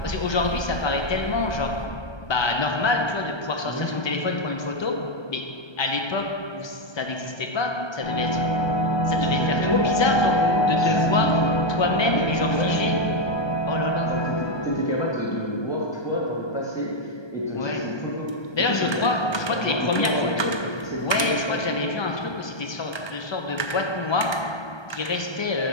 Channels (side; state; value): right; late; 1.2 ms